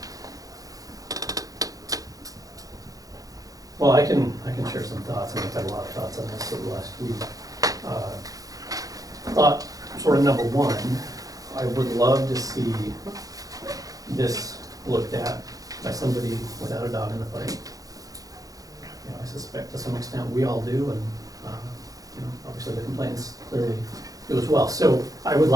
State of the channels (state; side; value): late; left; 0.17 ms